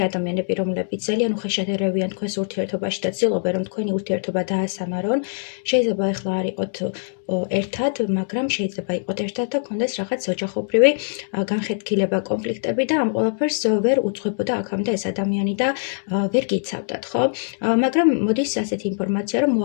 ადამიანები, რომლებიც ძალიან უხეშადერევიან თქვენს ურთიერთობაში და ცდილობენ, რომ თქვენი ურთიერთობა დაასამარონ. შეიძლება ეხლა არ იყოთ ერთად, მაგრამ შეიძლება იყოთ ერთად და გქონდეს რაღაც ოჯახობრივი განხეთქილება, კონფლიქტები და ამ ყველაფერს ვერ უძღვებოდა აქამდე ეს ადამიანი და ვერ გიცავდათ, ხო? მაგრამ მოდის ასეთი ინფორმაცია, რომ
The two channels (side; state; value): right; silent; digital silence